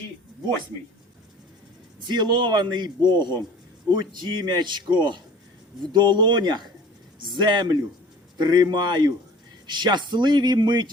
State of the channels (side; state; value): both; normal; correlation 0.46